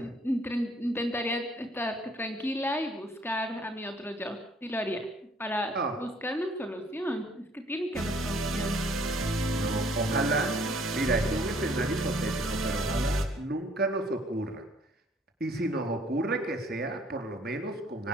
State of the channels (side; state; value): both; normal; correlation 0.60